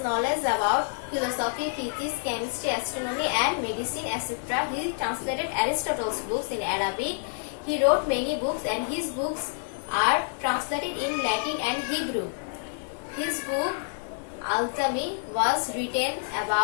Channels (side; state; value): right; silent; 60 dB below the other